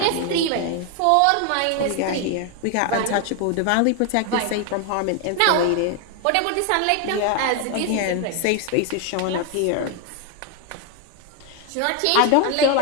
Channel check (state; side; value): different; both; correlation 0.01